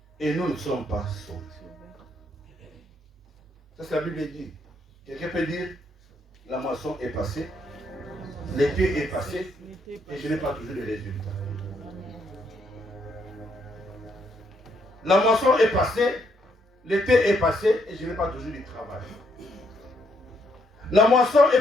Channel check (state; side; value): normal; both; correlation 0.74